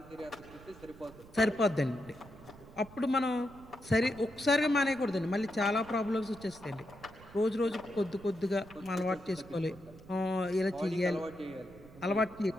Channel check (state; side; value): noise; right; rumble, 20 dB below the sound